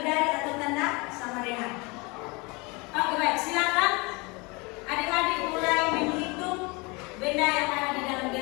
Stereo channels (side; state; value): right; quieter; 27.2 dB